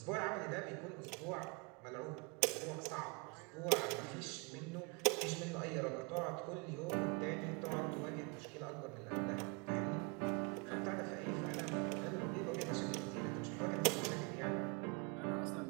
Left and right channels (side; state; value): left; quieter; 31.3 dB